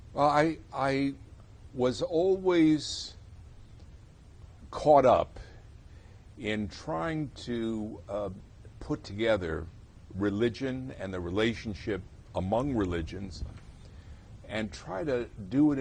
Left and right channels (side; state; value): both; identical; correlation 1.00